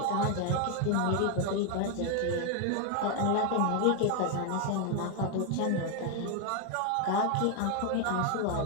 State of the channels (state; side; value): different; both; correlation 0.01